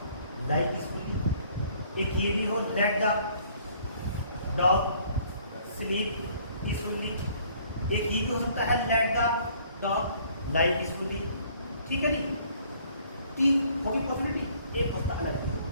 lie peacefully, एक ये भी हो, let the dog sleep peacefully, एक ये भी हो सकता है, let the dog lie peacefully, ठीक है नहीं, कि होगी पॉसिबिलिटी, एक होता अलग है।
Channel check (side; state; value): both; inverted; correlation -0.59